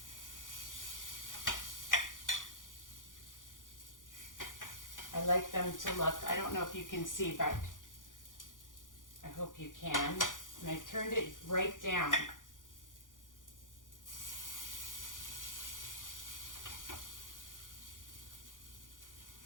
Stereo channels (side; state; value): right; late; 0.88 ms